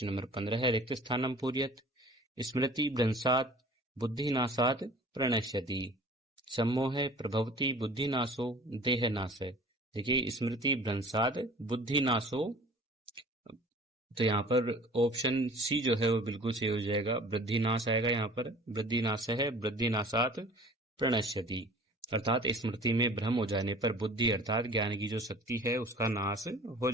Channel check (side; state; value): both; normal; correlation 0.46